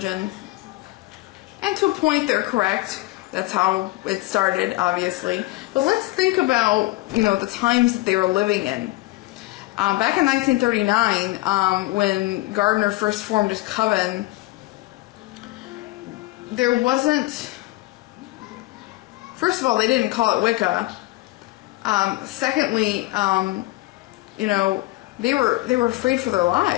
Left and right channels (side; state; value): right; quieter; 19.9 dB